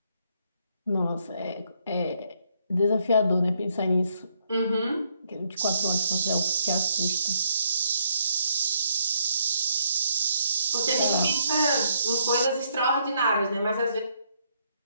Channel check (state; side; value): inverted; both; correlation -0.72